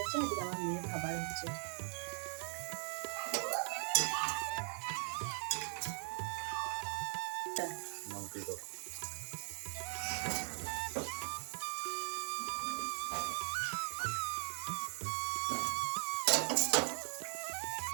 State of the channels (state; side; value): silent; left; 51 dB below the other